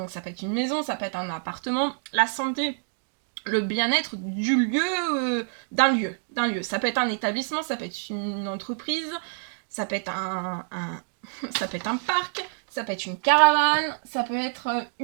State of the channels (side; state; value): left; silent; digital silence